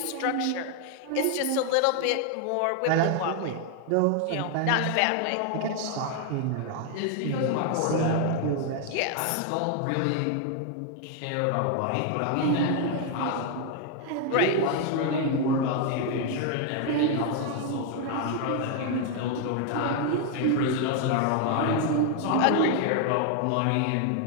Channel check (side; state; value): both; different; correlation 0.00